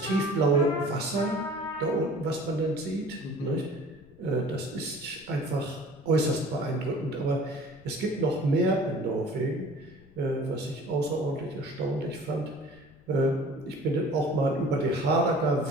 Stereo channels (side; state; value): left; noise; rumble, 26 dB below the sound